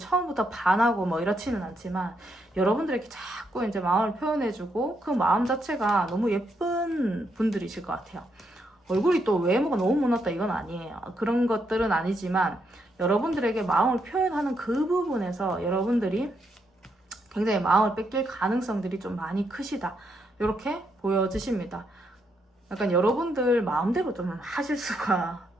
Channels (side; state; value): both; normal; correlation 0.78